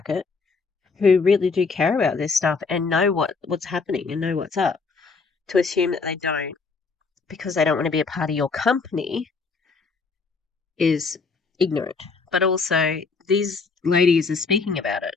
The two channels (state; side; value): quieter; right; 4.6 dB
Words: who really do care about this stuff and know what's happening and know what's up. To assume that they don't because they don't want to be a part of your company is ignorant. But also, these ladies are speaking about it